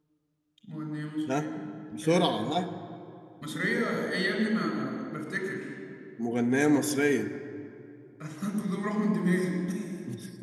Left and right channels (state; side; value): identical; both; correlation 1.00